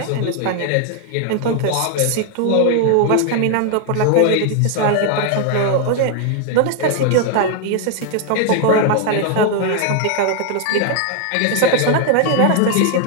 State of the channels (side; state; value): both; different; correlation 0.00